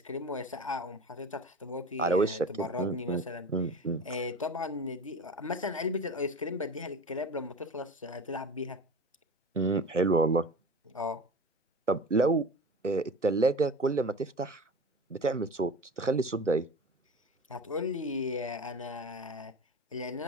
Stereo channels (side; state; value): both; normal; correlation 0.34